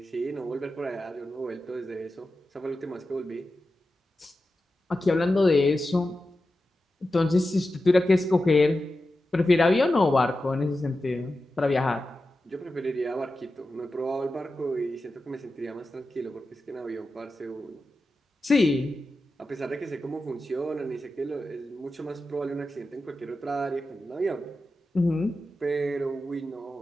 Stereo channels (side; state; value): both; normal; correlation 0.92